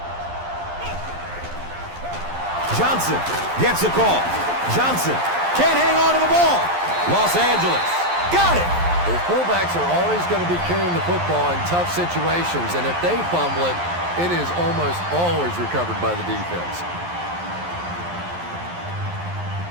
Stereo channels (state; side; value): late; left; 11 ms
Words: Johnson gets the call. Johnson can't hang on to the ball. Los Angeles got it. Well, fullbacks are always going to be carrying the football in tough situations, and if they fumble it, it is almost always recovered by the defense.